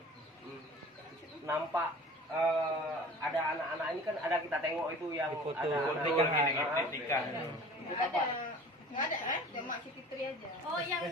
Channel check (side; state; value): both; normal; correlation 0.43